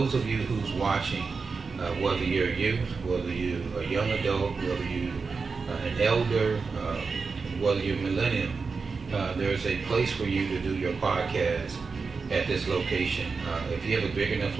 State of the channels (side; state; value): left; quieter; 4.8 dB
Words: of you who's watching, whether you're a youth, whether you're a young adult, whether you're an elder, whether you're a millennium, there's a place for you to do your podcast at this location. If you have a big enough